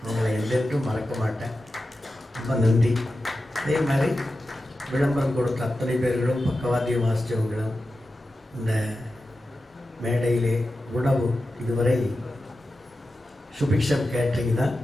அவங்களை எல்லோருக்கும் மறக்க மாட்டேன். ரொம்ப நன்றி. அதே மாதிரி விளம்பரம் கொடுத்த அத்தனை பேர்களும், பக்கவாத்தியம் வாசித்தவங்களும், இந்த மேடையிலே உணவு இதுவரை சுபிக்ஷம் கேட்ரிங் தான்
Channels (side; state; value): both; normal; correlation 0.92